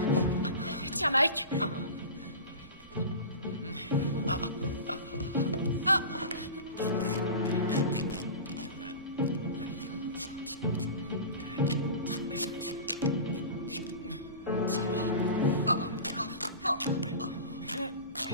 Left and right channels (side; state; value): both; inverted; correlation -0.32